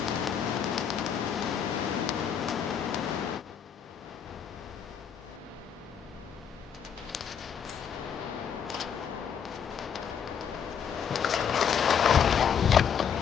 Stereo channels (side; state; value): right; quieter; 7.6 dB